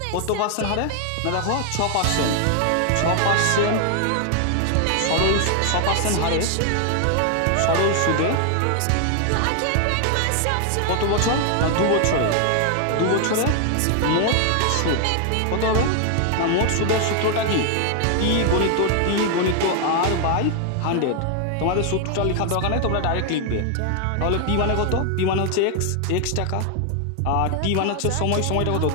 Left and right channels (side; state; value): both; different; correlation 0.00